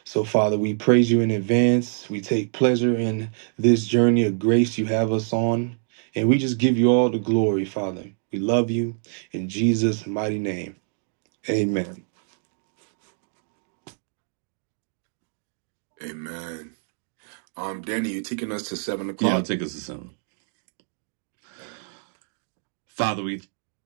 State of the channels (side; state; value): left; silent; digital silence